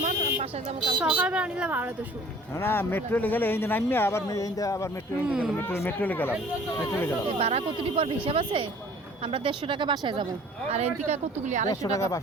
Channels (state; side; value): normal; both; correlation 0.51